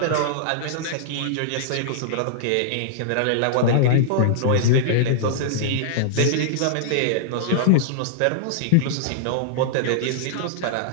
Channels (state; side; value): different; both; correlation -0.02